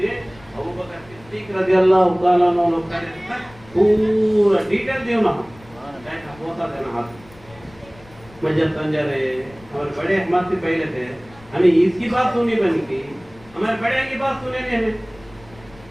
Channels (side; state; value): left; noise; rumble, 24 dB below the sound